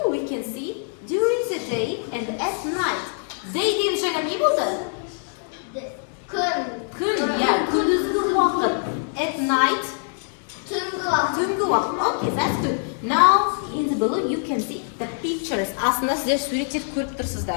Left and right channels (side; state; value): right; silent; 59 dB below the other